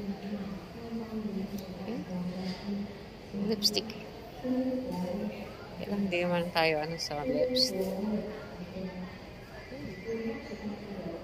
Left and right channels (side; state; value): both; identical; correlation 1.00